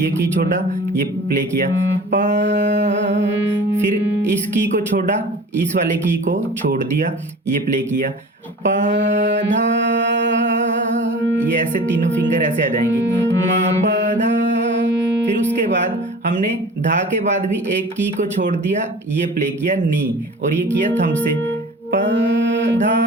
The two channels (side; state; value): both; normal; correlation 0.40